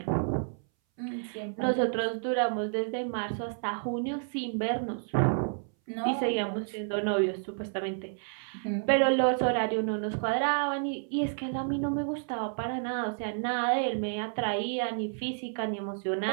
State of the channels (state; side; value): silent; left; 58 dB below the other